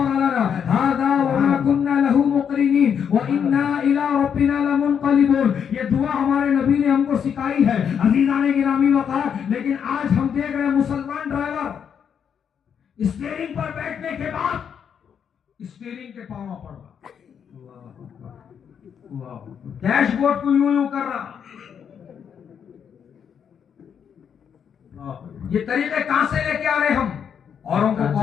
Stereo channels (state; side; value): quieter; right; 7.7 dB